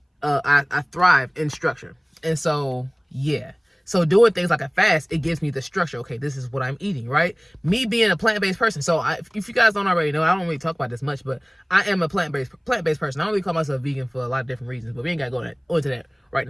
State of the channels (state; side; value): identical; both; correlation 1.00